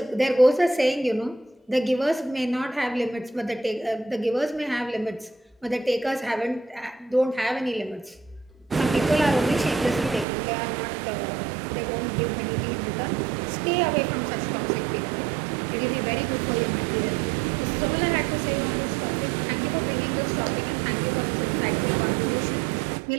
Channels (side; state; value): left; drops out; at 10.2 s